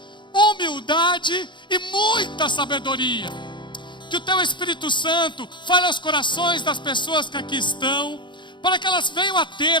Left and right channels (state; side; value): late; right; 0.23 ms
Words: humildade e muita sabedoria. Que o teu Espírito Santo fale aos corações das pessoas que aqui estão, para que elas venham a